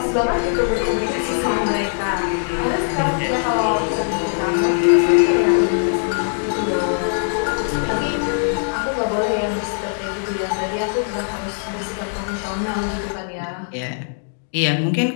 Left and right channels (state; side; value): silent; right; digital silence